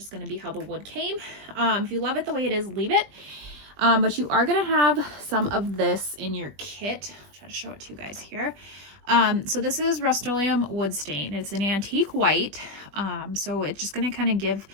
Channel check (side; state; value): left; late; 20 ms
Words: going to be how the wood came. If you love it the way it is, leave it. But you are going to have some of this in your kit. I'll try to show it to you guys here. So this is Rust-Oleum wood stain. It's an antique white. So it's just going to kind of give